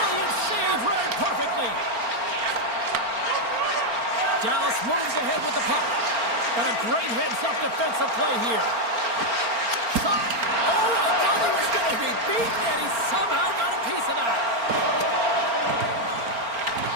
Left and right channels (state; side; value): late; left; 4.4 ms